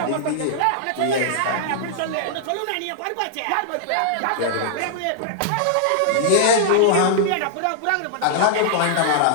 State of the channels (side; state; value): both; different; correlation -0.01